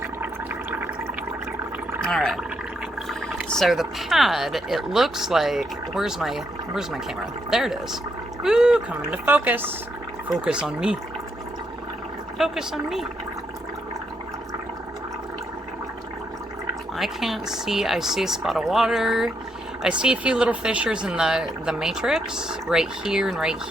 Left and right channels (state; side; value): normal; both; correlation 0.78